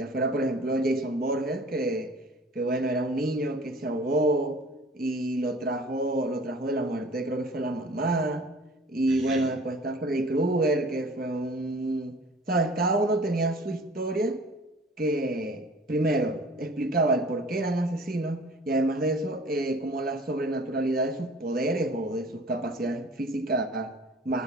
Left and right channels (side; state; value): both; normal; correlation 0.47